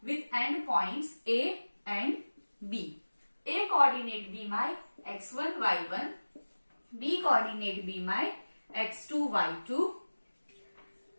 with endpoints A and B. A coordinate be my x1 y1, B coordinate be my x2 y2,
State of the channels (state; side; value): inverted; both; correlation -1.00